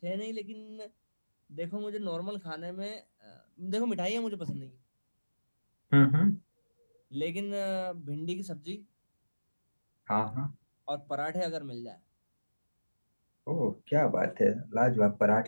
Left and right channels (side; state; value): both; inverted; correlation -1.00